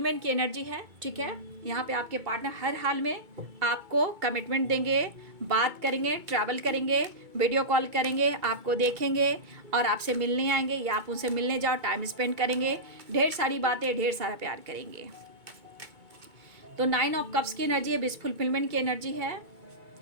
की एनर्जी है, ठीक है। यहाँ पे आपके पार्टनर हर हाल में आपको कमिटमेंट देंगे, बात करेंगे, ट्रैवल करेंगे, वीडियो कॉल करेंगे, आपको देखेंगे और आपसे मिलने आएंगे, या आप उनसे मिलने जाओ, टाइम स्पेंड करेंगे, ढेर सारी बातें, ढेर सारा प्यार करेंगे। तो 9 ऑफ कप्स की एनर्जी है, विश फुलफिलमेंट की एनर्जी है,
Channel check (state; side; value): late; left; 2.2 ms